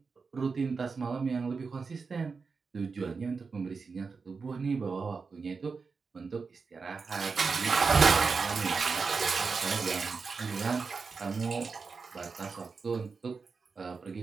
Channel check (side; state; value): left; quieter; 4.8 dB